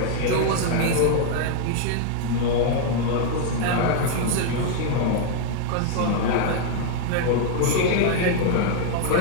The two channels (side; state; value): both; different; correlation 0.00